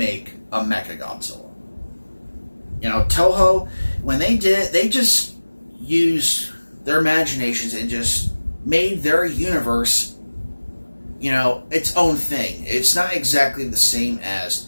a Mechagodzilla. Toho, when they did it, they just used their imaginations and just made their universe, its own thing. It's not exactly the same as,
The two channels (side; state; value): both; inverted; correlation -1.00